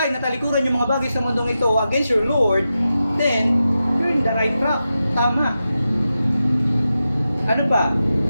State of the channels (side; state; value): both; inverted; correlation -0.90